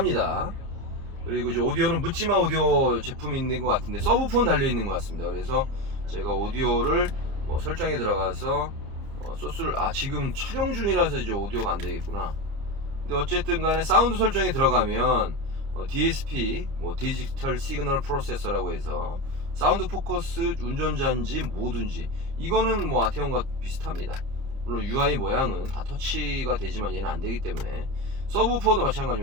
그리고 이제 오디오는 묻지마 오디오 제품이 있는 것 같은데 서브폰 달려 있는 것 같습니다. 그래서 제가 오디오를 설정에 들어가서 소스를 지금 촬영 중이라서 이제 오디오가 안 되겠구나. 근데 어쨌든 간에 사운드 설정에 들어가면 DSP 디지털 시그널 프로세서라고 해서 사운드 포커스 운전자인지 뭐든지 이거는 뭐 아테온과 비슷합니다. 물론 UI 모양은 다 터치가 되지만 얘는 안 되기 때문에. 서브우퍼도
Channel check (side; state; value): left; late; 30 ms